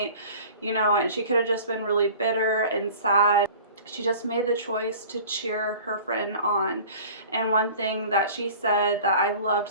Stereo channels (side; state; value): both; inverted; correlation -0.43